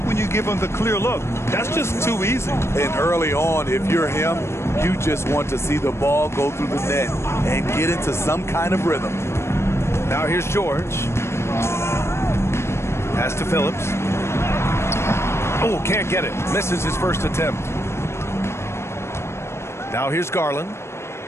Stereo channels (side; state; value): right; late; 0.13 ms